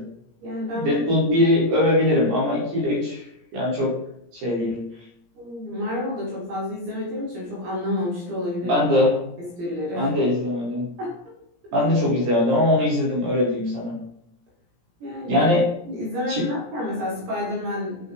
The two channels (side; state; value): left; late; 17 ms